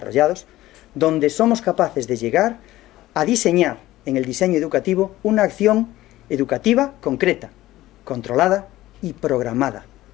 donde somos capaces de llegar a diseñar en el diseño educativo una acción educativa concreta, controlada y programada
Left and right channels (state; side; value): quieter; right; 16.1 dB